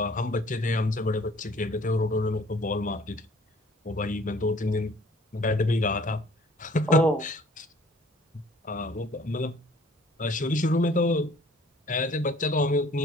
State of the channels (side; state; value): both; normal; correlation 0.55